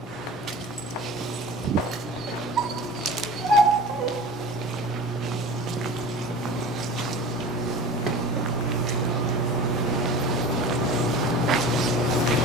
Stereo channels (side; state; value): both; normal; correlation 0.36